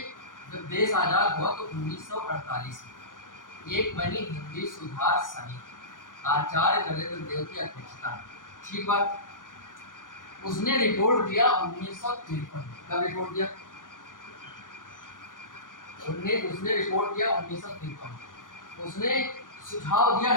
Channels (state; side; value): late; right; 0.88 ms